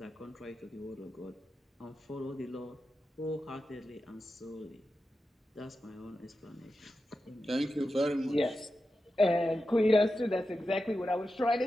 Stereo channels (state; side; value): normal; both; correlation 0.91